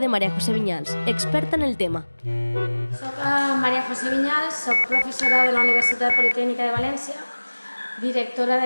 Maria José Viñals, experta en el tema. Soc Maria José Viñals, soc professora de la Universitat Politècnica de València, directora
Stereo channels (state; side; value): inverted; both; correlation -1.00